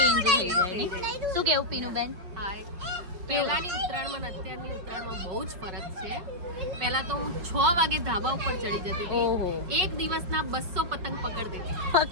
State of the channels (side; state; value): left; late; 5.1 ms